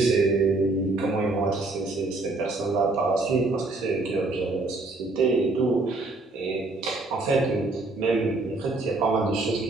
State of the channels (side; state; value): left; quieter; 3.2 dB